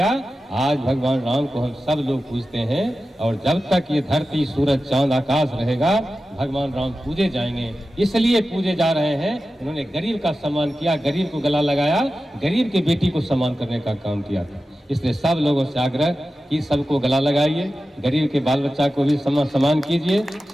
आज भगवान राम को हम सब लोग पूजते हैं और जब तक ये धरती सूरज चांद आकाश रहेगा भगवान राम पूजे जाएंगे। इसलिए पूजे जा रहे हैं, उन्होंने गरीब का सम्मान किया, गरीब को गला लगाया, गरीब की बेटी को सम्मान करने का काम किया था। इसलिए सब लोगों से आग्रह कि सबको गला लगाइए, गरीब के बाल बच्चा को भी सम्मान कीजिए,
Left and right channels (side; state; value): both; normal; correlation 0.93